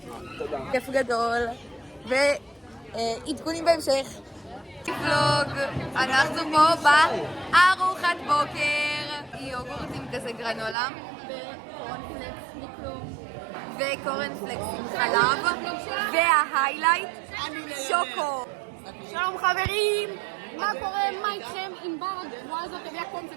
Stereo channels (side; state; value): left; drops out; at 10.8 s